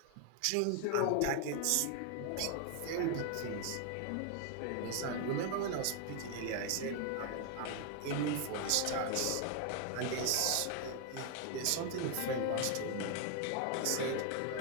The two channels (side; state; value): both; different; correlation 0.00